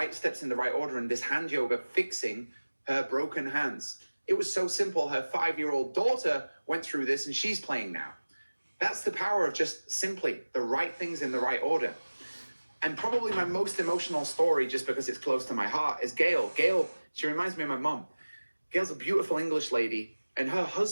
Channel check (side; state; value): both; inverted; correlation -1.00